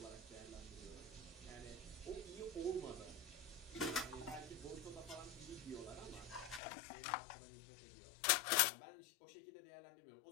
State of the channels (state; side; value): drops out; right; at 6.6 s